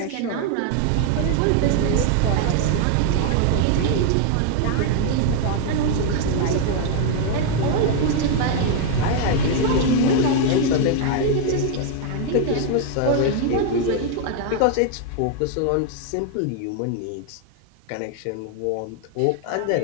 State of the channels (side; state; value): both; different; correlation 0.00